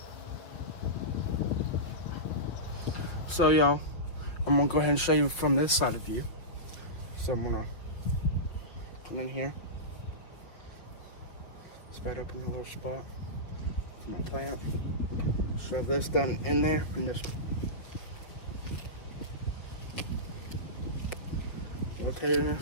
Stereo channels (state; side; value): late; right; 5.7 ms